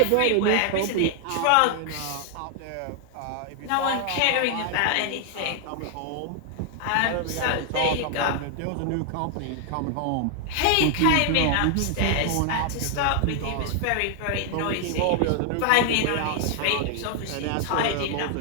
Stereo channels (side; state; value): both; different; correlation 0.00